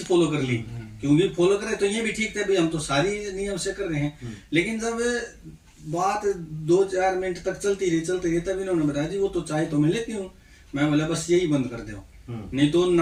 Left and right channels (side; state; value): both; identical; correlation 1.00